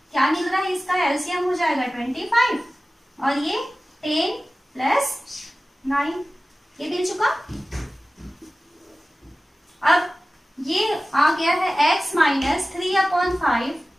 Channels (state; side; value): normal; both; correlation 0.96